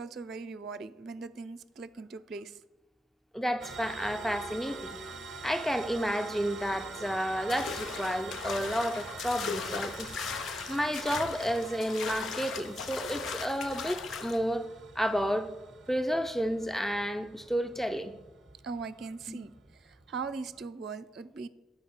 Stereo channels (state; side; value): normal; both; correlation 0.86